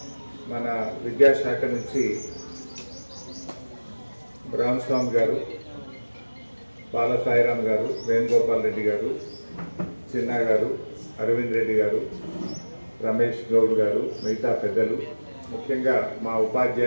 మన విద్యాశాఖ నుంచి రామస్వామి గారు, బాల సాయిరామ్ గారు, వేణుగోపాల్ రెడ్డి గారు, చిన్నా గారు, అరవింద్ రెడ్డి గారు, రమేష్ గౌడ్ గారు, మిగతా పెద్దలు, ముఖ్యంగా మా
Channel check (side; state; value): both; inverted; correlation -1.00